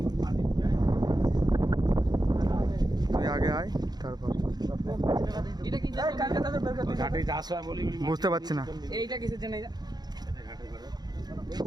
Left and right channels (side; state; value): left; late; 0.20 ms